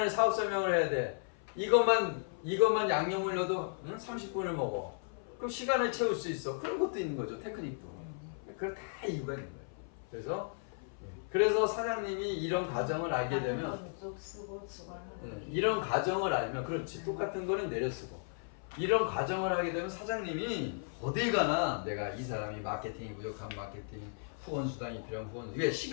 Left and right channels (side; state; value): right; silent; 54 dB below the other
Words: 사업 설명을 해야 돼. 이것만 양념을 넣어도 30분을 먹어. 그럼 시간을 채울 수 있어. 그런 것도 있는 거죠. 테크닉도. 그걸 다 이유가 있는 거예요. 그래서 사장님이 이런 과정을 알게 되면 이런 과정을 알면 그렇지. 똑같은 거는 내려 쓰고 이런 과정을 하게 되면 사장님이 어딜 가나 내가 이 사람이 마케팅이 부족한 마케팅 후원 수당이 필요한 후원 왜